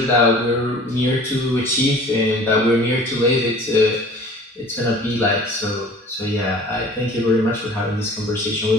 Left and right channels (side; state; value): both; normal; correlation 0.46